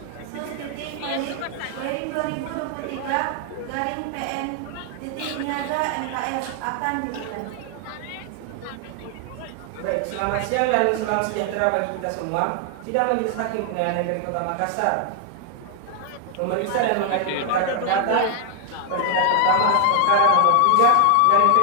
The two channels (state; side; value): different; both; correlation 0.00